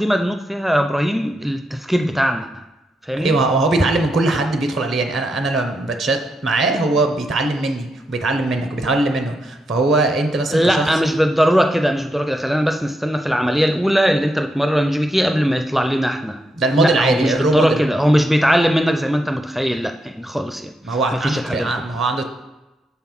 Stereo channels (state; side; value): normal; both; correlation 0.82